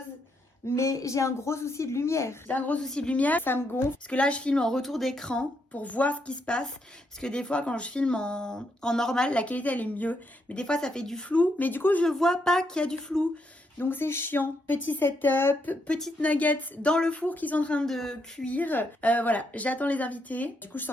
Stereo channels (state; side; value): normal; both; correlation 0.78